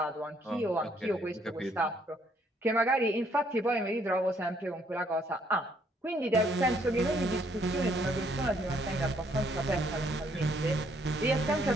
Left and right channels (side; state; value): both; normal; correlation 0.68